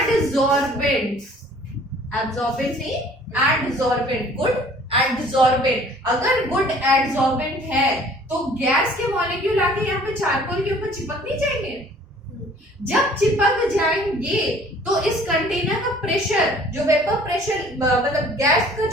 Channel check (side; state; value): both; normal; correlation 0.53